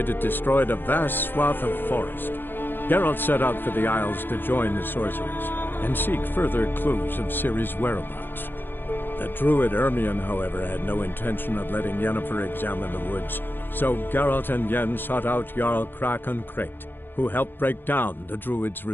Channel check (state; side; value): late; right; 0.098 ms